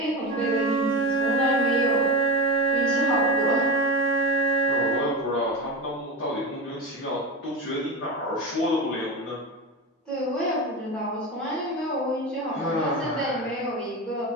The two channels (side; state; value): both; normal; correlation 0.23